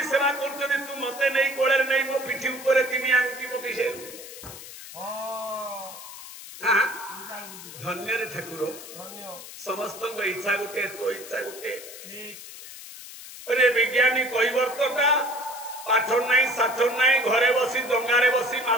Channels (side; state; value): left; noise; hiss, 14 dB below the sound